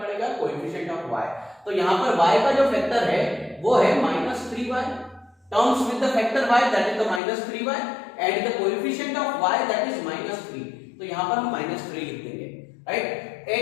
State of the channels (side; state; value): right; drops out; at 7.2 s